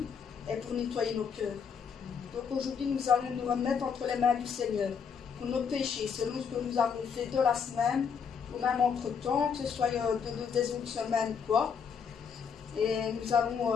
et pour nettoyer nos cœurs. Donc aujourd'hui, nous allons nous remettre entre les mains du Seigneur pour nos péchés, selon ce que nous avons fait de la semaine, ou même entre-temps, que ce soit des autres semaines, quoi. Et nous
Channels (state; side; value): quieter; right; 6.5 dB